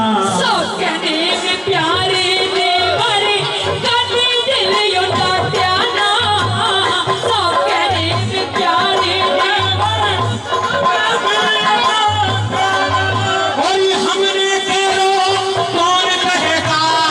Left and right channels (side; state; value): both; identical; correlation 1.00